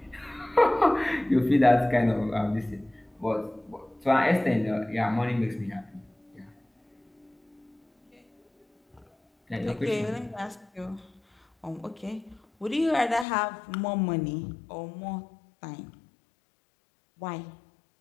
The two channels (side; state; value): right; drops out; at 13.2 s